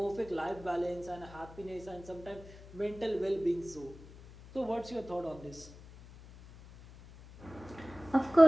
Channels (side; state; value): left; noise; hum, 18 dB below the sound